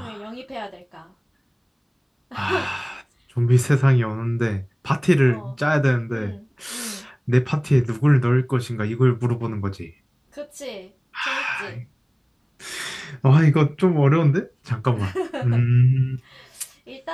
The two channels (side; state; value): both; identical; correlation 1.00